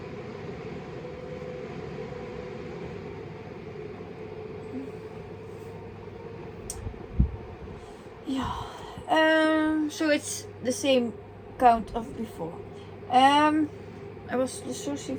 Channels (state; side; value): identical; both; correlation 1.00